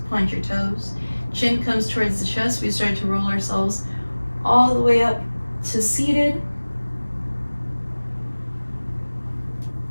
point your toes. Chin comes towards the chest. We start to roll ourselves all the way up to seated.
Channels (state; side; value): inverted; both; correlation -1.00